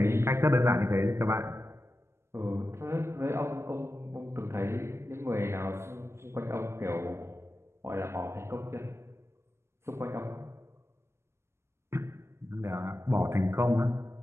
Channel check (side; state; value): left; late; 0.13 ms